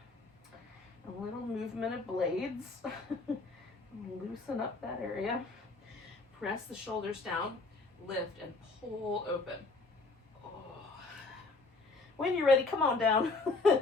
A little movement of blades. Loosen up that area. Press the shoulders down, lift, and pull open. When you're ready, come on down.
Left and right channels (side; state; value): right; quieter; 3.5 dB